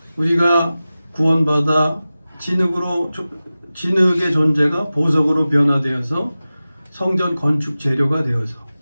우리가 구원받아 진흙의 존재가 보석으로 변화되어서 성전 건축 재료가 되어서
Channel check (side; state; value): both; inverted; correlation -0.96